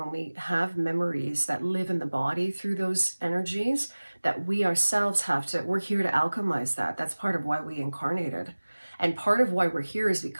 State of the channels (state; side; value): inverted; both; correlation -1.00